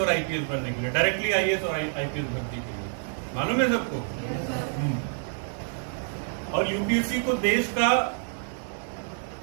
आईपीएस बनने के लिए, डायरेक्टली आईएएस और आईपीएस भर्ती के लिए। मालूम है सबको? और यूपीएससी को देश का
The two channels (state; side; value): silent; left; 59 dB below the other